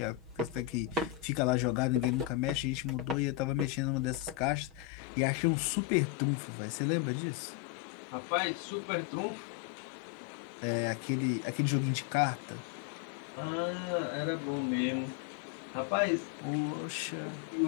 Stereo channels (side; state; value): right; drops out; at 4.9 s